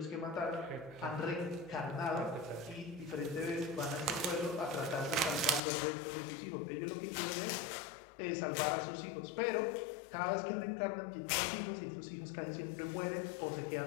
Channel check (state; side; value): drops out; right; at 5.6 s